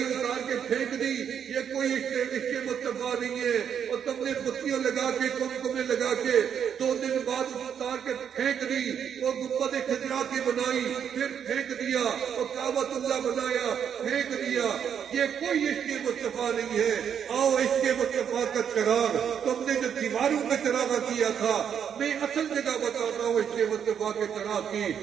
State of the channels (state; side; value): quieter; left; 8.1 dB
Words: اتار کے پھینک دی، یہ کوئی عشق مصطفیٰ نہیں ہے۔ اور تم نے بتیاں لگا کے، کمکمیں لگا کے 2 دن بعد اتار کے پھینک دی، وہ گنبد خضرا کی بنائی، پھر پھینک دیا، اور کعبۃ اللہ بنایا، پھینک دیا۔ یہ کوئی عشق مصطفیٰ نہیں ہے۔ آؤ عشق مصطفیٰ کا چراغ، تم نے جو دیواروں میں چراغ کیا تھا، میں اصل جگہ بتاتا ہوں عشق مصطفیٰ کے چراغ کی،